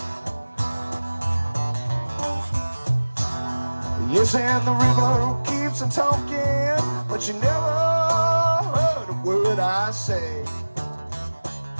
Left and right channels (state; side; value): inverted; both; correlation -1.00